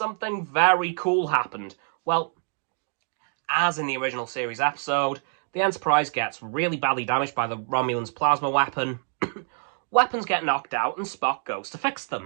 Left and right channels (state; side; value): silent; left; 56 dB below the other